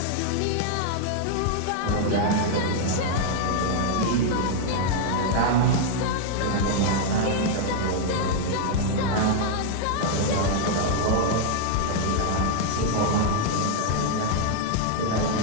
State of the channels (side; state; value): both; different; correlation 0.00